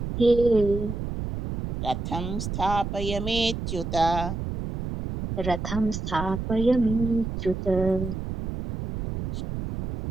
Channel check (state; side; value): noise; right; rumble, 5 dB below the sound